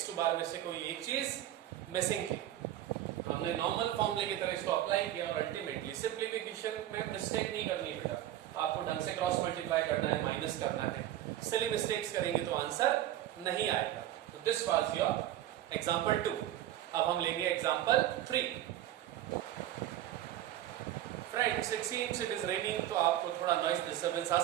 बार में से कोई एक चीज मिसिंग थी. हमने नॉर्मल फॉर्मूले की तरह इसको अप्लाई किया और अल्टीमेटली सिंप्लीफिकेशन में मिस्टेक नहीं करनी बेटा. आपको ढंग से क्रॉस मल्टीप्लाई करना है, माइनस करना है. सिली मिस्टेक्स करेंगे तो आंसर नहीं आएगा. तो दिस वाज योर एग्जांपल 2. अब हम लेंगे example 3. Friends, it seems it is raining, तो आपको थोड़ा नॉइज डिस्टर्बेंस आ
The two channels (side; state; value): left; quieter; 12.9 dB